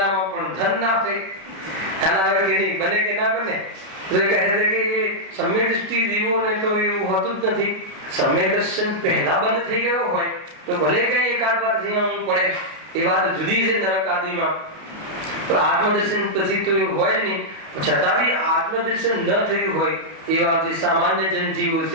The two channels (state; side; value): late; left; 31 ms